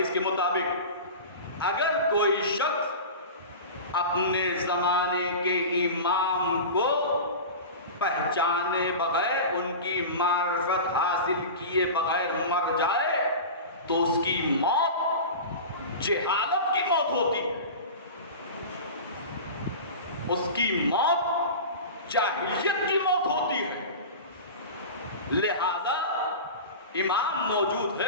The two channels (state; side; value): inverted; both; correlation -0.30